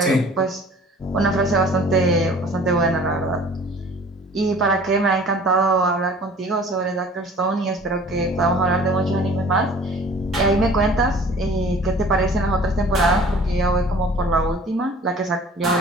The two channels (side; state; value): both; normal; correlation 0.48